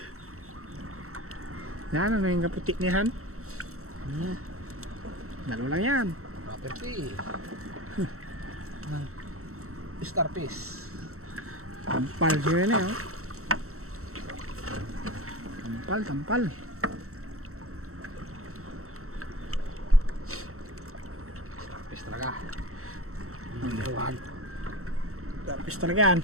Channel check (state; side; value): late; left; 0.64 ms